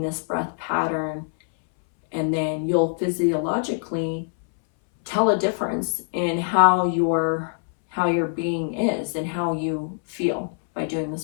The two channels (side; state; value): right; silent; 63 dB below the other